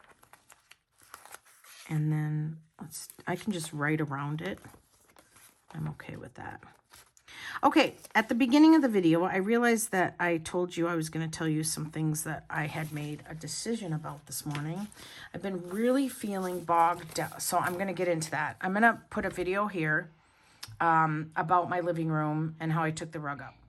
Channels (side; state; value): both; identical; correlation 1.00